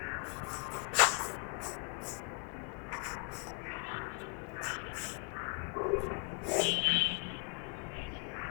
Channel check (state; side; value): quieter; right; 34.9 dB